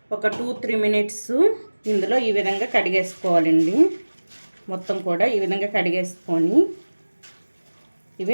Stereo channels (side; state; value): both; inverted; correlation -1.00